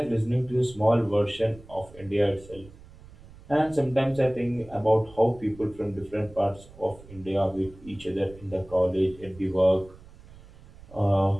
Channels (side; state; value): right; noise; rumble, 21 dB below the sound